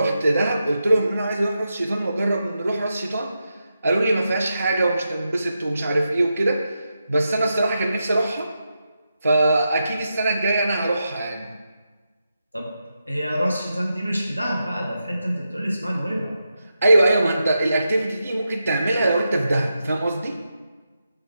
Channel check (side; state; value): both; inverted; correlation -0.87